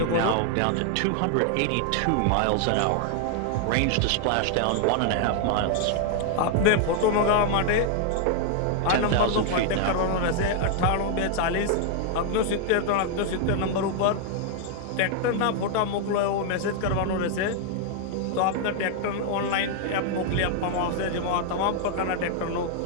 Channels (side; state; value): both; different; correlation 0.00